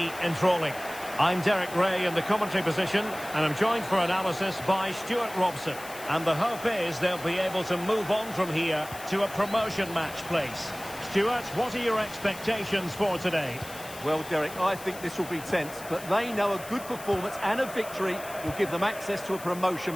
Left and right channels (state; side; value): noise; left; hiss, 15 dB below the sound